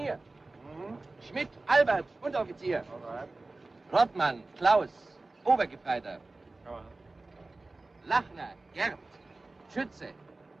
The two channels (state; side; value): quieter; left; 3.2 dB